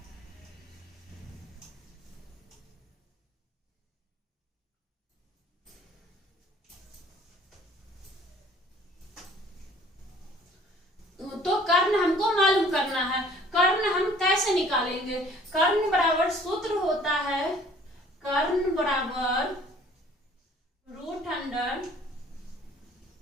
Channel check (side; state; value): both; normal; correlation 0.54